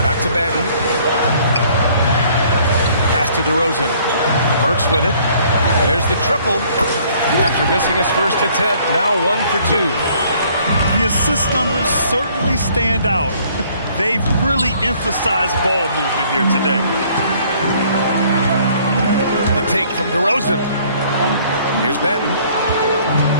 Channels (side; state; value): both; inverted; correlation -0.60